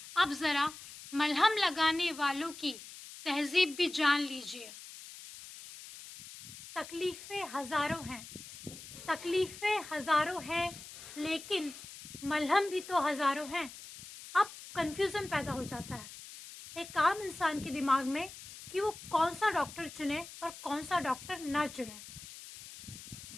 अब ज़रा मलहम लगाने वालों की तहज़ीब भी जान लीजिए। तकलीफ़ें हज़ारों हैं, तकलीफ़ें हज़ारों हैं, लेकिन मलहम भी तो हज़ारों हैं। अब कन्फ्यूज़न पैदा हो जाता है एक आम इंसान के दिमाग में कि वो कौन सा डॉक्टर चुने और कौन सा डॉक्टर ना चुने।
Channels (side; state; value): left; noise; hiss, 14 dB below the sound